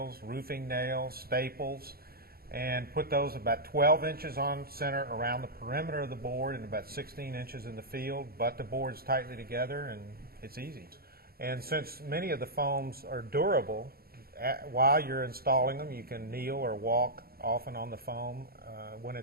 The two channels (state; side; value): late; left; 0.44 ms